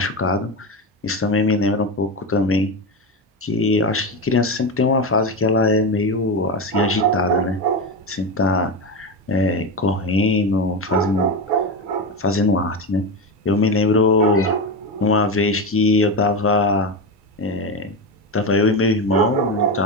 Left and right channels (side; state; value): both; normal; correlation 0.17